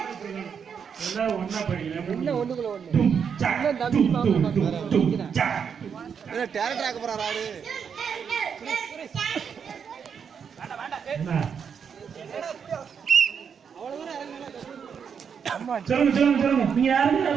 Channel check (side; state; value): left; quieter; 6.9 dB